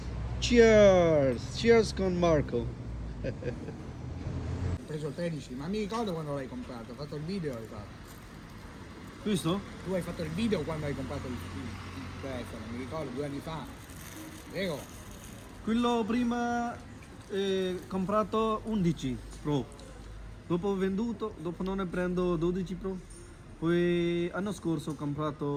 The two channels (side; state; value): both; identical; correlation 1.00